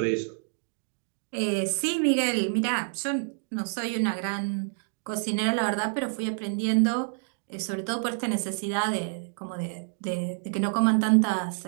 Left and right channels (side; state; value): left; silent; digital silence